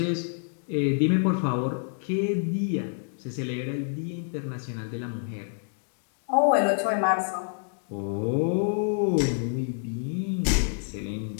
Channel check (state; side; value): silent; right; digital silence